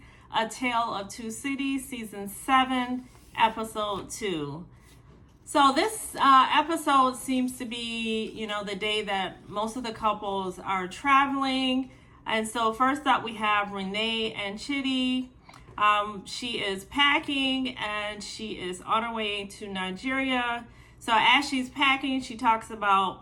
A Tale of Two Cities, Season 7, Episode 2. So this episode seems to be, the day that most of the couples are traveling. And so first up we have Renee and Chitty. She is packing and she is on her way to Nigeria. So as she's packing, she talks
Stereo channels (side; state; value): both; identical; correlation 1.00